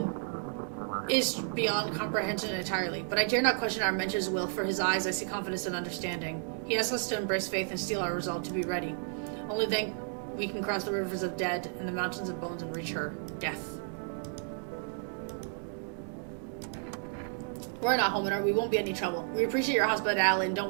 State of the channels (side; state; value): left; silent; 56 dB below the other